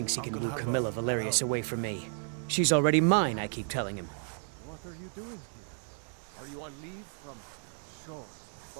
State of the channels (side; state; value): left; silent; 56 dB below the other